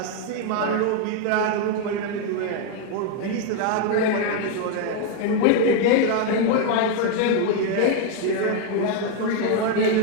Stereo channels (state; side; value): different; both; correlation 0.01